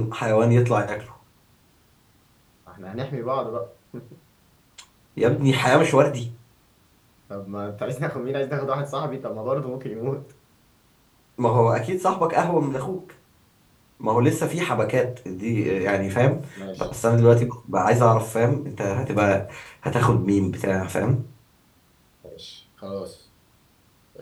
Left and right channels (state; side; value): identical; both; correlation 1.00